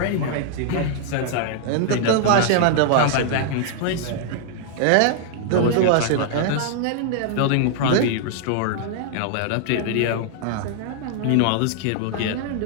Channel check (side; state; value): both; different; correlation -0.01